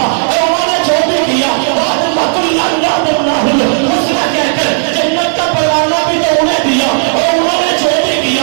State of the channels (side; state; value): left; silent; digital silence